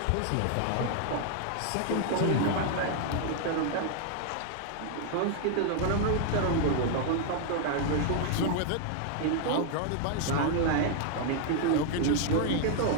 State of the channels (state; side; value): different; both; correlation 0.00